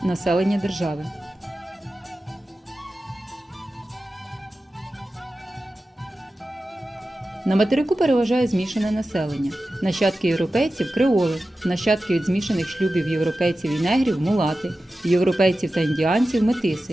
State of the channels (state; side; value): normal; both; correlation 0.94